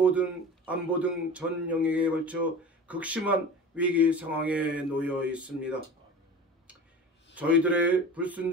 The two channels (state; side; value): normal; both; correlation 0.35